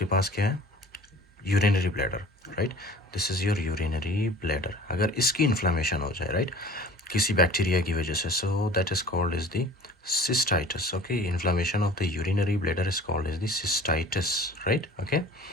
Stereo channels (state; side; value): normal; both; correlation 0.45